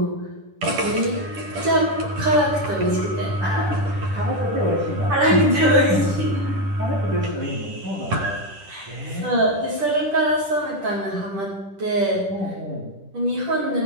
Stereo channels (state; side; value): late; left; 10 ms